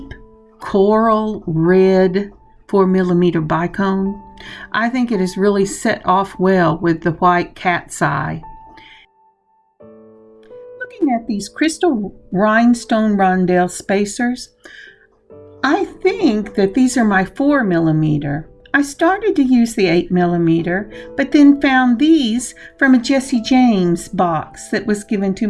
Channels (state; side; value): identical; both; correlation 1.00